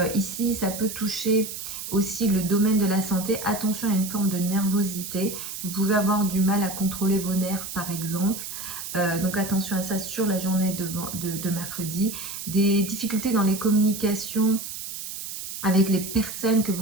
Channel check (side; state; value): right; noise; hiss, 8 dB below the sound